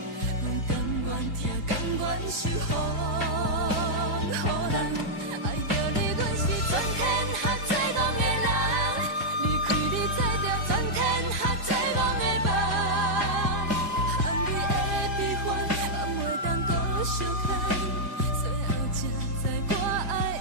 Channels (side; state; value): right; late; 4.9 ms